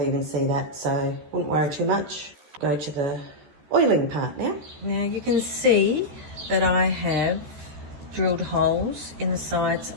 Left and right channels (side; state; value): left; late; 14 ms